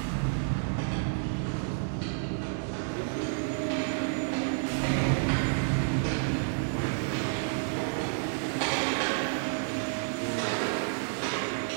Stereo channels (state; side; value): silent; left; 57 dB below the other